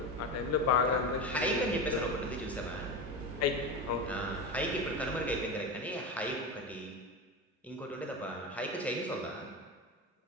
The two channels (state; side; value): normal; both; correlation 0.21